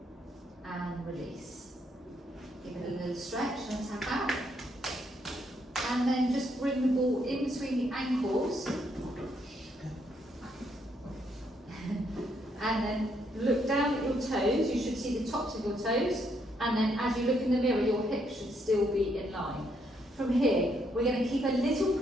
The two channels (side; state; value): both; normal; correlation 0.74